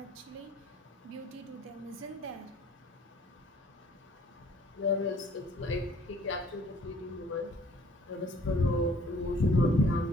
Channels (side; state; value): both; normal; correlation 0.57